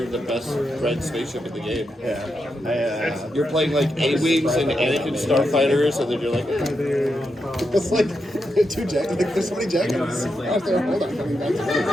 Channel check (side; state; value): both; normal; correlation 0.85